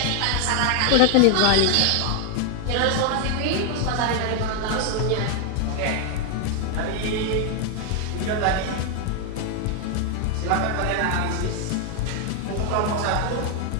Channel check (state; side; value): different; both; correlation 0.00